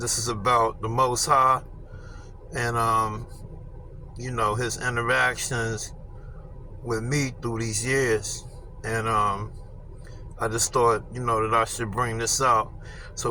is about the Most High and, his interactions with me through these years. And, I just thought, that I should bring this out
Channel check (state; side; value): identical; both; correlation 1.00